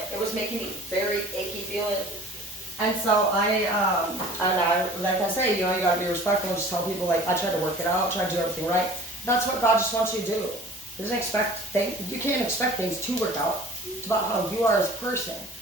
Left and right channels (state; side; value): normal; both; correlation 0.46